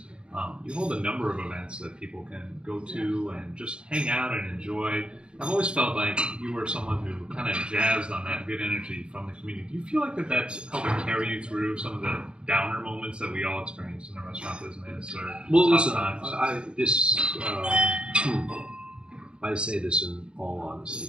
You hold a number of events that people can go to and just hang out and enjoy. I've always felt like you were someone who kind of jazzed on that good energy from the community. Do you feel like that's helping carry you through some of the downer moments that we all experience in the restaurant business? Well, listen, I say this in all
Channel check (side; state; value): left; late; 0.055 ms